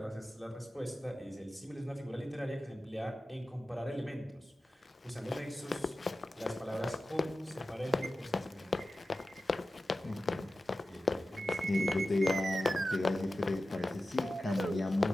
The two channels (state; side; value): normal; both; correlation 0.94